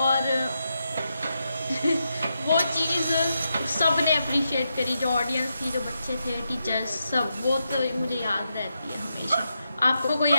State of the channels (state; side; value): inverted; both; correlation -0.85